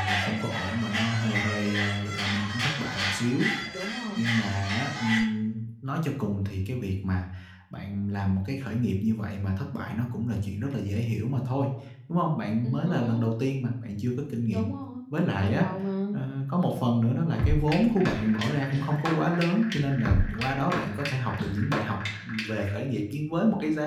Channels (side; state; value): both; identical; correlation 1.00